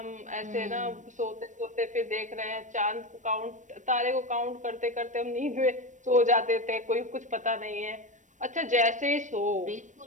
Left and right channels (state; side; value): late; left; 0.36 ms